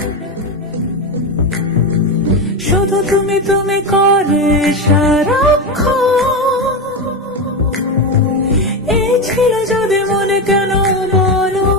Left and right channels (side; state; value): both; normal; correlation 0.15